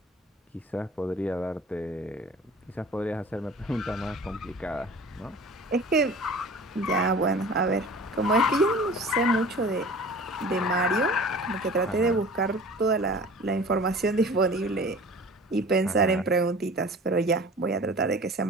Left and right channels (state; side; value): normal; both; correlation 0.42